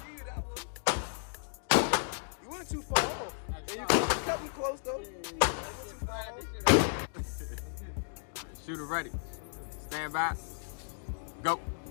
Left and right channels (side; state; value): right; silent; digital silence